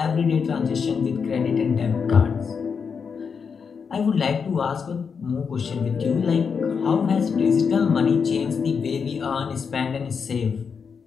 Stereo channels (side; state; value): right; quieter; 6.0 dB